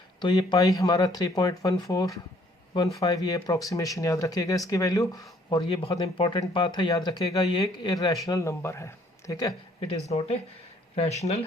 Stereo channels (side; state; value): both; normal; correlation 0.62